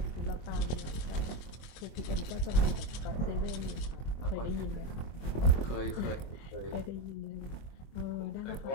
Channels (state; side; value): late; right; 24 ms